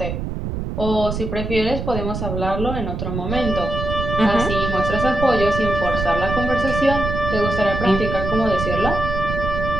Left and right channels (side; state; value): right; noise; rumble, 4 dB below the sound